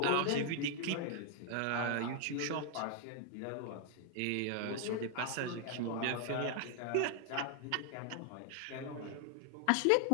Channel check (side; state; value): both; different; correlation 0.00